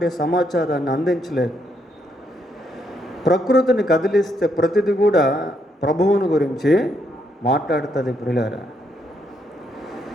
సమాచారాన్ని అందించలేదు. ప్రకృతిని కదిలిస్తే ప్రతిది కూడా ప్రభువుని గురించి మాట్లాడుతుంది ప్రియులారా.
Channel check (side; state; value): both; normal; correlation 0.76